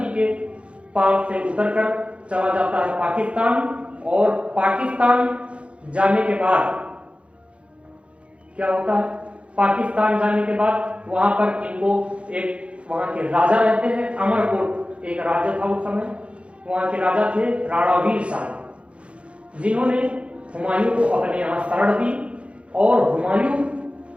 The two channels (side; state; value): left; late; 0.060 ms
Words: के पार से उतरकर चला जाता है पाकिस्तान, और पाकिस्तान जाने के बाद क्या होता है? पाकिस्तान जाने के बाद वहां पर इनको एक वहां के राजा रहते हैं, अमरकोट एक राज्य था उस समय, वहां के राजा थे राणा वीर शाह, जिन्होंने हुमायूं को अपने यहाँ शरण दी। और हुमायूं